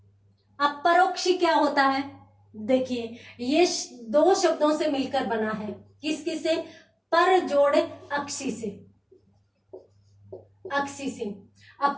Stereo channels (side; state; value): both; identical; correlation 1.00